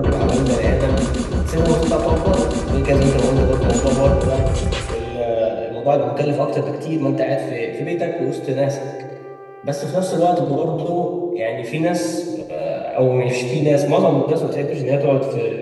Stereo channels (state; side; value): identical; both; correlation 1.00